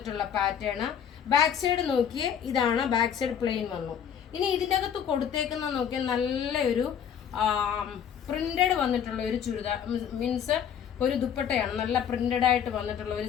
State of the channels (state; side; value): quieter; right; 8.3 dB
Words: പാറ്റേൺ. ബാക്ക് സൈഡ് നോക്കിയേ, ഇതാണ് ബാക്ക് സൈഡ് പ്ലെയിൻ വന്നു. ഇനി ഇതിൻ്റെ അകത്ത് കൊടുത്തേക്കുന്ന നോക്കിയാൽ നല്ലൊരു പ്രിന്റഡ് വന്നിട്ടുള്ള ഒരു ചുരിദാർ, മീൻസ് ഒരു ദുപ്പട്ടയാണ്. നല്ല പ്രിന്റഡ് ആയിട്ട് വന്നിട്ടുള്ള ഒരു